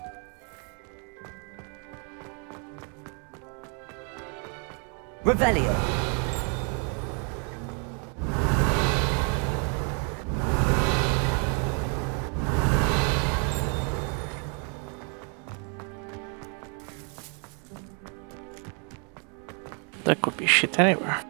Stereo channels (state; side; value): quieter; left; 38.8 dB